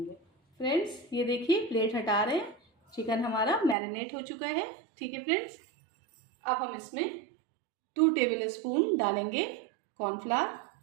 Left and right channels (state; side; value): drops out; left; at 3.8 s